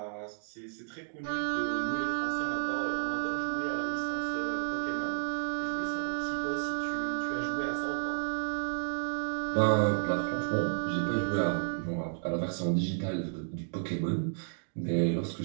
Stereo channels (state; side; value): silent; left; digital silence